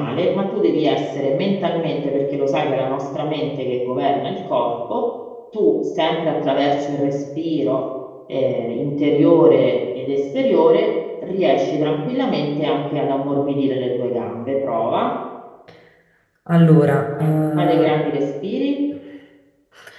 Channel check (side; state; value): both; identical; correlation 1.00